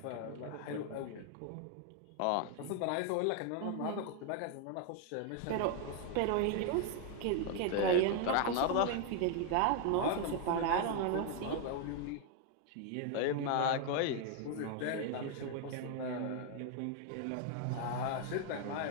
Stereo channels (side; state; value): both; different; correlation 0.00